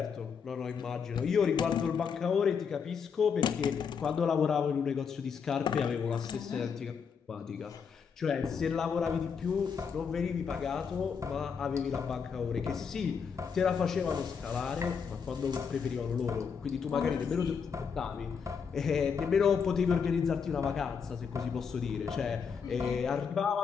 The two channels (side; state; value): right; quieter; 6.3 dB